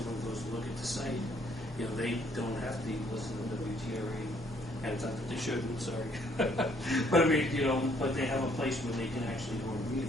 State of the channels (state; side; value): normal; both; correlation 0.65